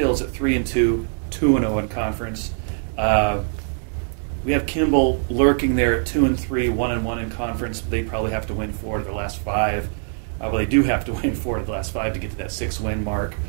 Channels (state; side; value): silent; left; 64 dB below the other